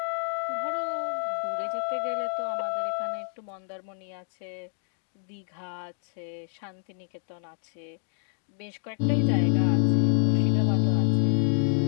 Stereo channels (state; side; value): silent; right; 59 dB below the other